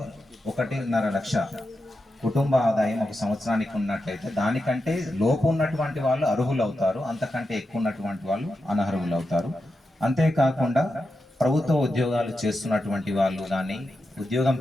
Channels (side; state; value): both; normal; correlation 0.89